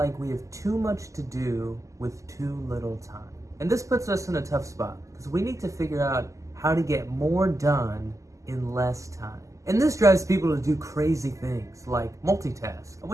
we have too much to do with too little time. And this puts us in a tough spot because we need to figure out how to get more done in less time. And this drives people to do crazy things like multitask. And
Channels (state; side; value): late; left; 0.16 ms